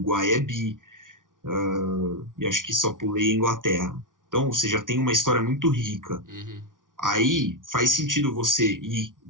é bi, e acho que só pulei a Inglaterra. Então, você já tem uma história muito rica. Uhum. Aí faz sentido você ir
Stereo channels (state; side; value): late; left; 0.88 ms